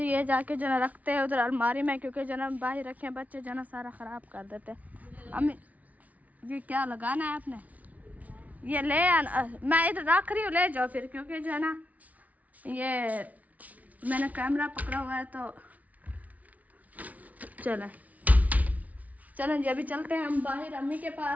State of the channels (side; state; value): left; late; 0.072 ms